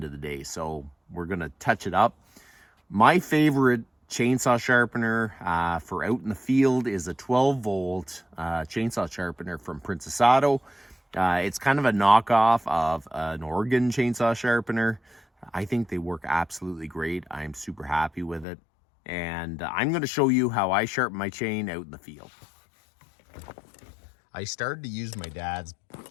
of the day. So we're going to touch it up. My favorite chainsaw sharpener for out in the field is a 12-volt chainsaw sharpener from Princess Auto. It's kind of a knockoff of an Oregon chainsaw sharpener. I think they work absolutely great. I'm super happy with it. And I'm going to show you how I sharpen my chain out in the field. I started to use my dad's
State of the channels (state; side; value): drops out; right; at 18.4 s